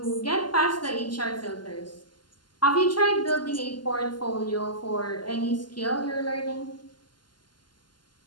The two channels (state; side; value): late; right; 0.71 ms